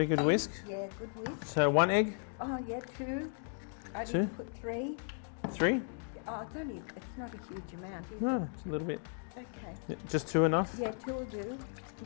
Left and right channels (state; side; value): silent; right; 54 dB below the other